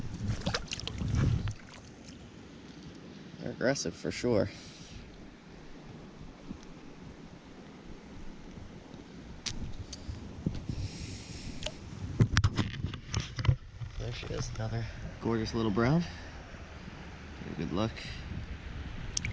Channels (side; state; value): both; identical; correlation 1.00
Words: They're aggressive for sure. There she is, another gorgeous little brown. Good luck.